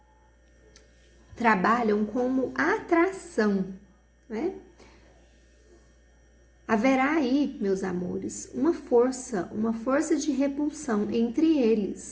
trabalham como atração, né? Haverá aí, meus amores, uma força de repulsão entre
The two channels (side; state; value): both; identical; correlation 1.00